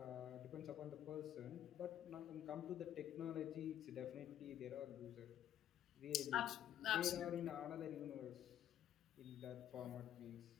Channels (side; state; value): right; quieter; 11.0 dB